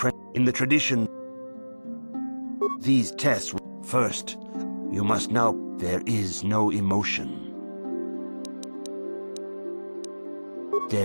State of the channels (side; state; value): both; inverted; correlation -1.00